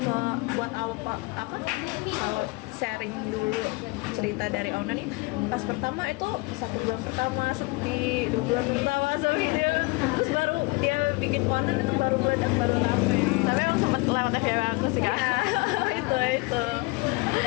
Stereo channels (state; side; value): quieter; right; 25.5 dB